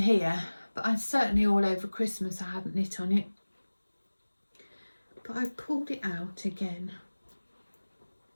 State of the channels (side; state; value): both; inverted; correlation -1.00